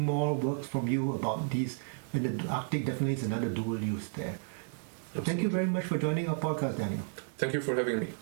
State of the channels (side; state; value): left; silent; digital silence